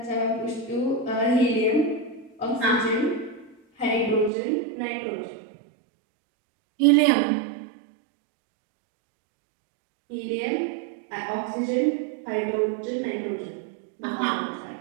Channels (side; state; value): left; drops out; at 4.3 s